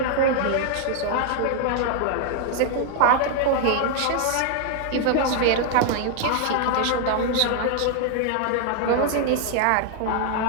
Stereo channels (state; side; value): different; both; correlation 0.00